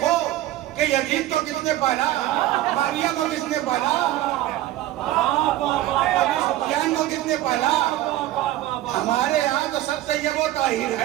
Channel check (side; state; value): left; quieter; 14.7 dB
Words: کہ یزید کو کس نے پالا, معاویہ کو کس نے پالا, ابو سفیان کو کس نے پالا. ہمارے یہاں تو سب طیب و طاہر